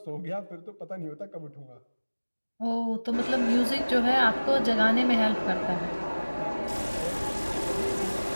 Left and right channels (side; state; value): both; inverted; correlation -1.00